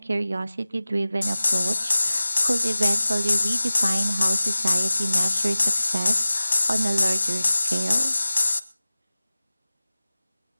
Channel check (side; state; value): both; inverted; correlation -0.96